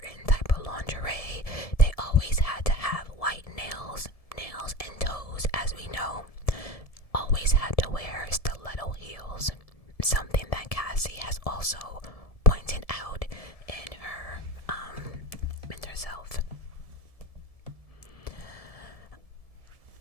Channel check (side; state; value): right; late; 1.7 ms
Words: type of lingerie. They always had to have white nails and toes, as we know. Always had to wear stiletto heels, something that Cassie has also pointed out in herself.